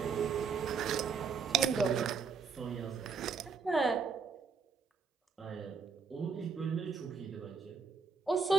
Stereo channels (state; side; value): quieter; left; 5.6 dB